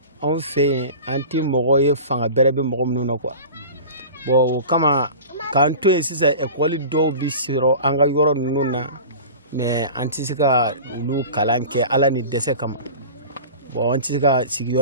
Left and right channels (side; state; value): both; inverted; correlation -0.36